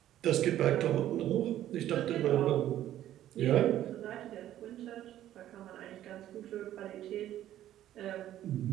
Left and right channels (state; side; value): quieter; left; 12.5 dB